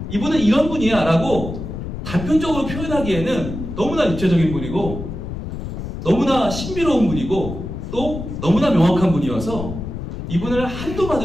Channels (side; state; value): left; noise; rumble, 7 dB below the sound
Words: 이분은 이런 분이야 라고 단편적으로 표현하기에는 너무나 입체적인 분이고 너무나 신비로운 분이고 또 너무나 명확한 분이어서 이분을 한두